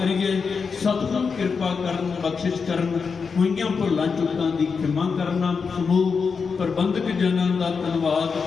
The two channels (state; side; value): quieter; right; 5.4 dB